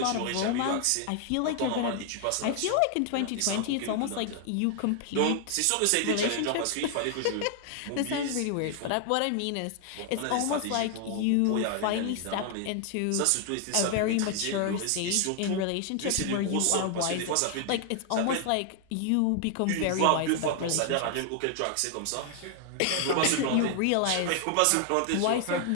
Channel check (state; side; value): different; both; correlation 0.00